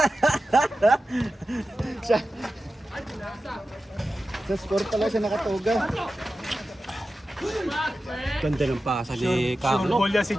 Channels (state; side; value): normal; both; correlation 0.93